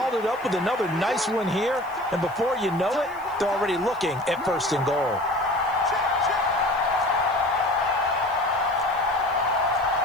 it up with another nice one here, and before you know it, they're already looking at 1st and goal.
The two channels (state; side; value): noise; left; hiss, 27 dB below the sound